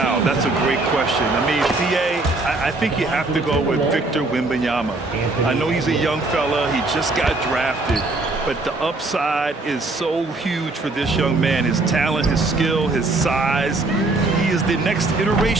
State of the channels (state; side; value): quieter; left; 3.1 dB